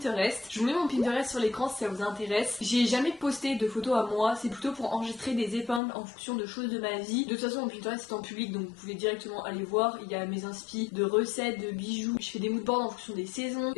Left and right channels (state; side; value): drops out; right; at 5.8 s